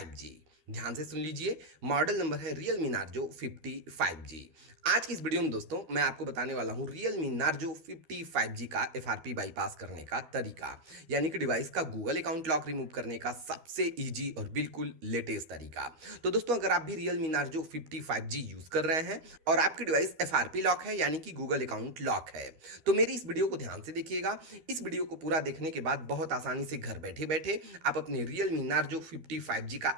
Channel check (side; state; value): left; late; 13 ms